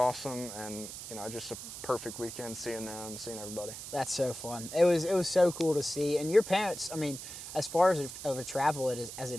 and you know, just a perfect weekend seeing them, seeing everybody. That's so fun. It was so cool to see. And your parents, I mean, as far as of a travel as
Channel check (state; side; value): noise; right; hiss, 10 dB below the sound